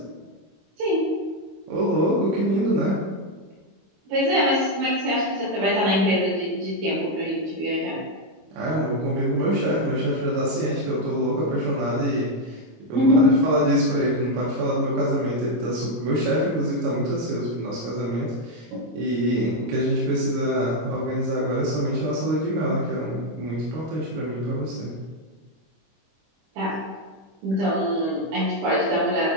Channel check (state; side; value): late; left; 25 ms